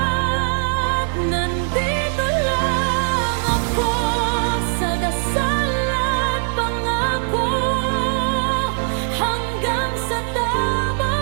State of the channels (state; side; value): silent; left; digital silence